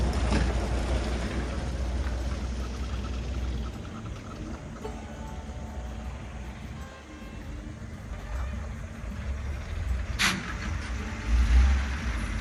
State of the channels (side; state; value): both; identical; correlation 1.00